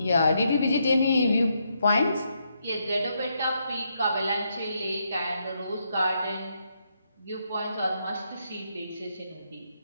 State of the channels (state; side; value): inverted; both; correlation -0.79